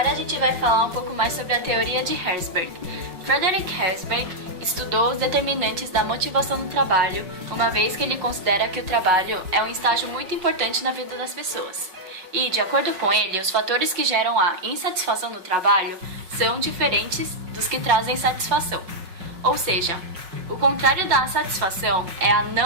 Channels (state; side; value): late; left; 5.4 ms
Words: a gente vai falar um pouco mais sobre a teoria de Herzberg. Frederick Herzberg estudou os determinantes da motivação no trabalho, uma vez que ele considera que o trabalho é um estágio muito importante na vida das pessoas. E, de acordo com ele, os fatores que geram a insatisfação no trabalho são diferentes dos que trazem satisfação. Ou seja, o contrário da satisfação é a